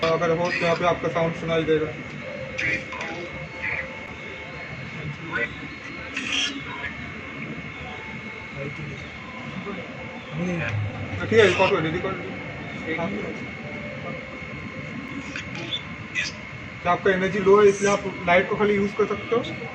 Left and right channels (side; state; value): both; identical; correlation 1.00